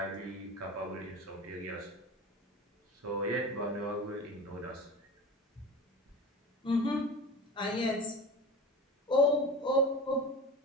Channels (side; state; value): both; normal; correlation 0.32